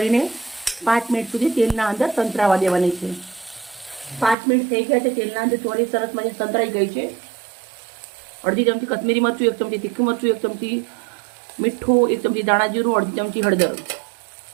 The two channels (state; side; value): drops out; left; at 4.4 s